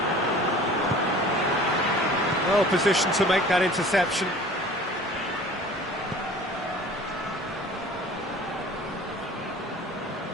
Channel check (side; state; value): both; normal; correlation 0.45